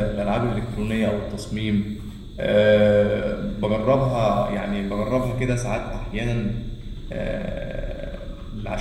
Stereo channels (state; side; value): identical; both; correlation 1.00